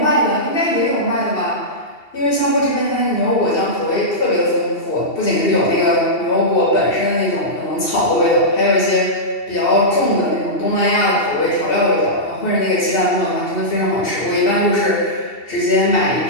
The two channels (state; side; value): late; right; 2.7 ms